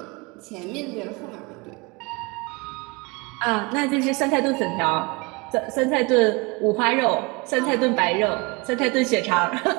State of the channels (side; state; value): left; quieter; 27.6 dB